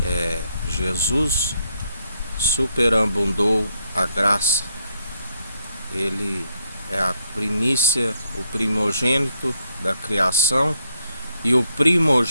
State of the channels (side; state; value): both; inverted; correlation -0.76